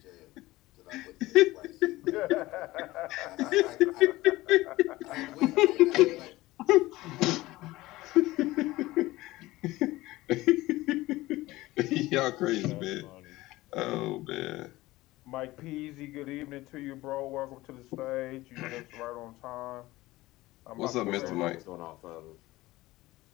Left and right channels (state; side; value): quieter; right; 18.5 dB